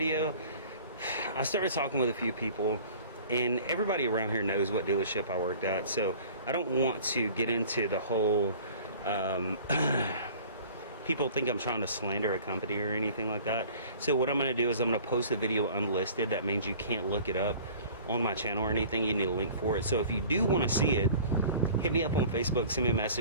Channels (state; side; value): inverted; both; correlation -0.46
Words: I started talking with a few people, and everybody around here knows what dealership I worked at, so I don't want to get into the whole people think I'm trying to slander a company or anything like that. So what I'm gonna do is I'm gonna post the video unlisted. That means you can't look it up on my channel or anything. You need a link for it. So if you do want to see it, hit me up on Facebook, send me a